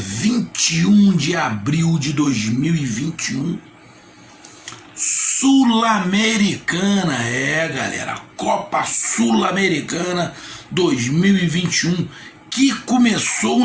de abril de 2021, Sul-Americana, galera, Copa Sul-Americana 2021, que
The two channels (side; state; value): both; identical; correlation 1.00